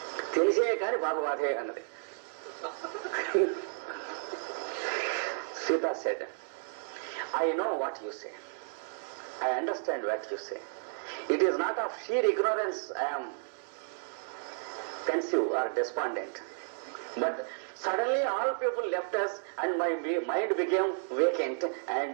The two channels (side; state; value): left; silent; digital silence